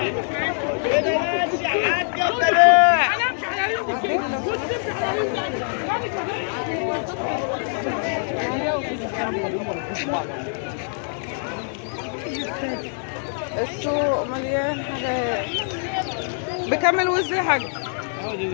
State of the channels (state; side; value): silent; right; 63 dB below the other